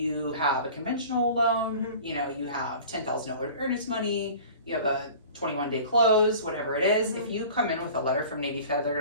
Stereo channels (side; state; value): both; inverted; correlation -0.42